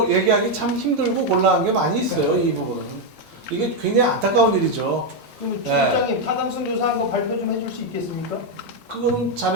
얘기하기 참 힘들고 곤란한 게 많이 있어요. 이 부분은 이게 굉장히 안타까운 일이죠. 그럼 네. 주장님 타당성 조사한 거 발표 좀 해줄 수 있겠습니까? 그거는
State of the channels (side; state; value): both; normal; correlation 0.03